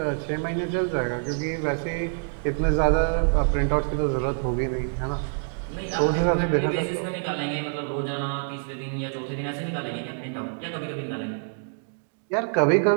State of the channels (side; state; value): left; silent; digital silence